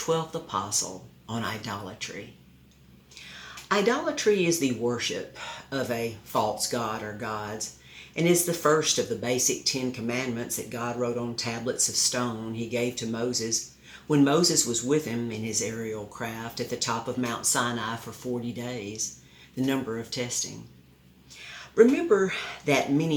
Apostle on idolatry. Idolatry is the worship of a false god or gods and is the first of the basic 10 commandments that God wrote on tablets of stone he gave to Moses when Moses was with him in his aerial craft at the top of Mount Sinai for 40 days, the number of testing. Remember that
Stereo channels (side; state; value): both; identical; correlation 1.00